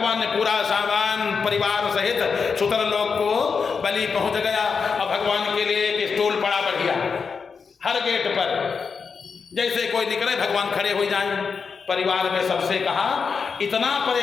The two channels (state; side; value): quieter; right; 5.5 dB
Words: ने पूरा सामान परिवार सहित सुतर लोक को बलि पहुंच गया, और भगवान के लिए एक स्टूल पड़ा बढ़िया हर गेट पर, जैसे कोई निकले भगवान खड़े हो जाएं। परिवार में सबसे कहा इतना